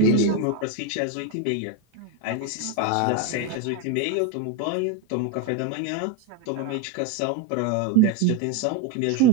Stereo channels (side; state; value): both; different; correlation 0.03